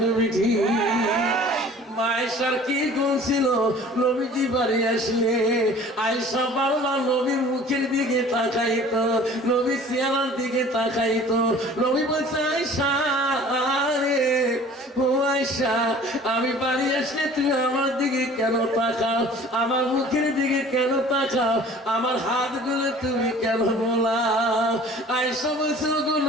আয়েশার কি গুণ ছিল নবীজি বাড়ি আসলে আয়েশা বারবার নবীর মুখের দিকে তাকাইতো, নবী চেহারার দিকে তাকাইতো। নবী বলছে আয়েশা রে ও আয়েশা আমি বাড়ি আসলে তুমি আমার দিকে কেন তাকাও, আমার মুখের দিকে কেন তাকাও, আমার হাতগুলো তুমি কেন বোলাও? আয়েশা বলছে গো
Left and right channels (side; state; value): both; normal; correlation 0.47